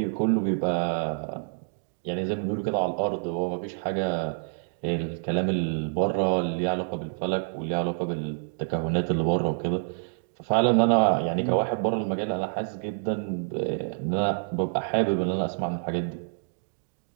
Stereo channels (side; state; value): left; silent; digital silence